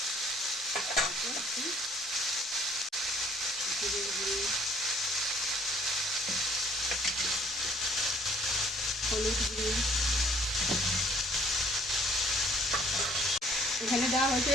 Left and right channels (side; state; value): both; normal; correlation 0.59